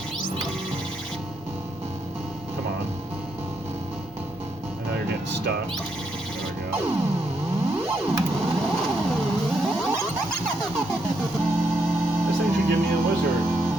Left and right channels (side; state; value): both; normal; correlation 0.78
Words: Come on. I know you're getting stuck. There we go. This thing should give me a wizard